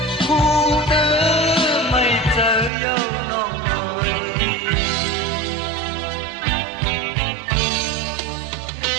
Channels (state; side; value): drops out; left; at 2.7 s